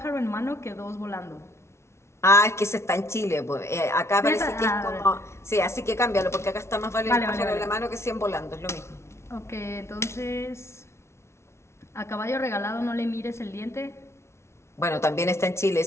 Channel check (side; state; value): right; late; 0.13 ms